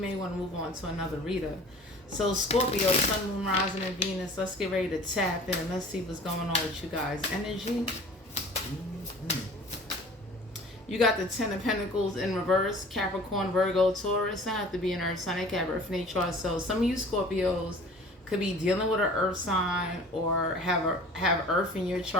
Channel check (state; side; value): normal; both; correlation 0.45